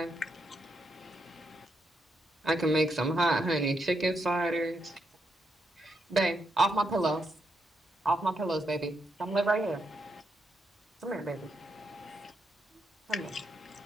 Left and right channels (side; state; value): both; normal; correlation 0.80